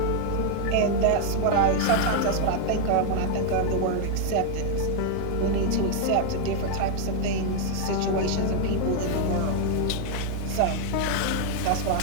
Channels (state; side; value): different; both; correlation 0.00